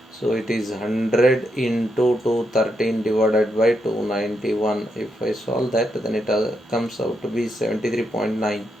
So it is 100 into 213 divided by 291. If I solve that, then it comes out to be 73.9.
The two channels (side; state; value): both; normal; correlation 0.81